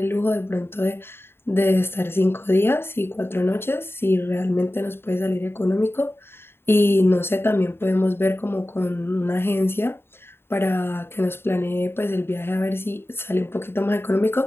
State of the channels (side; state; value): right; late; 0.11 ms